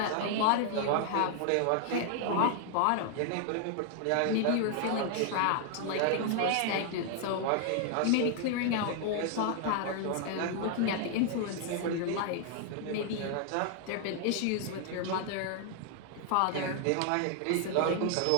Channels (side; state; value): both; different; correlation 0.00